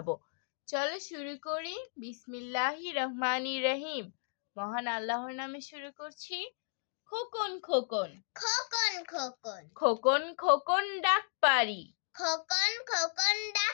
চলো শুরু করি। বিসমিল্লাহির রহমানির রহিম। মহান আল্লাহর নামে শুরু করছি। খোকন খোকন খোকন খোকন খোকন খোকন ডাক পারি, খোকন খোকন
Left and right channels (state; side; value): silent; right; digital silence